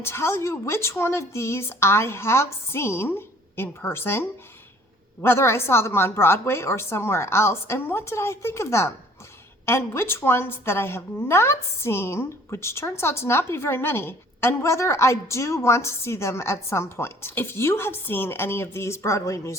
tell you which one of these I have seen in person, whether I saw them on Broadway or somewhere else, and what did I think of them, and which ones that I have not seen, which turns out to not be very many, and whether I do want to see them at some point. If you have seen any of these Broadway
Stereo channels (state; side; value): normal; both; correlation 0.55